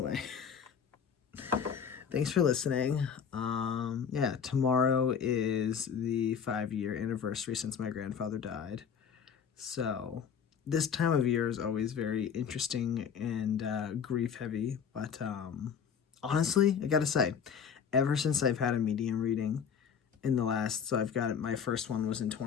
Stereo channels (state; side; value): quieter; right; 7.2 dB